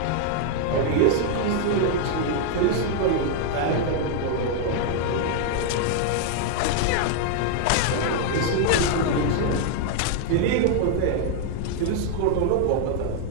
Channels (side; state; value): both; different; correlation 0.00